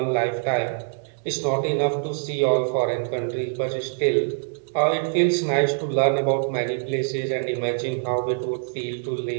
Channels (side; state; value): left; silent; digital silence